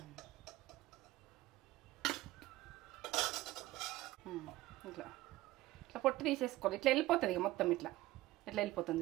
ఇట్లా ఇట్లా పొట్టు తీసేసుకోవాలి. ఇట్లా వెళ్ళిపోతుంది. ఇక మొత్తం ఇట్లా వెళ్ళిపోతుంది.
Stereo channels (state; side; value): quieter; left; 17.3 dB